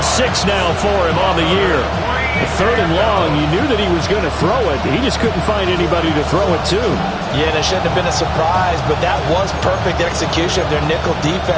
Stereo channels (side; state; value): both; identical; correlation 1.00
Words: 6 now for him on the year. Third and long, you knew that he was going to throw it. He just couldn't find anybody to throw it to. Yeah, and it shouldn't have been a surprise, but that was perfect execution of their nickel